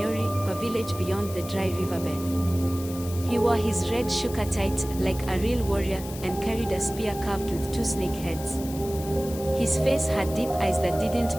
a village beyond the dry riverbed. He wore his red shuka tight, like a real warrior, and carried a spear carved with 2 snake heads. His face had deep eyes that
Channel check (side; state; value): left; noise; hiss, 14 dB below the sound